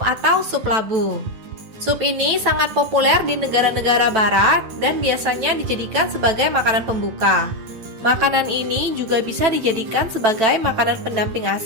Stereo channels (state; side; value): late; left; 9.1 ms